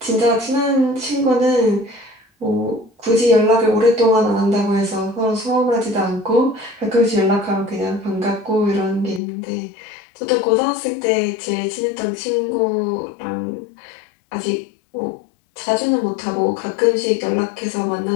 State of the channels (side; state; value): right; drops out; at 9.2 s